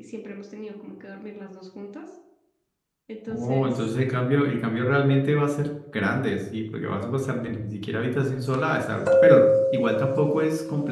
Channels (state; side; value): identical; both; correlation 1.00